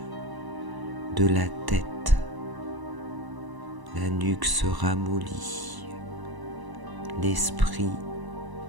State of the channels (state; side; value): late; left; 1.0 ms